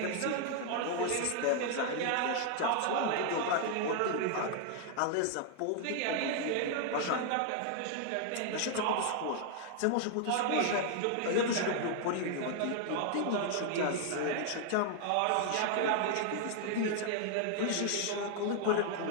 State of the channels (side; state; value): both; different; correlation 0.00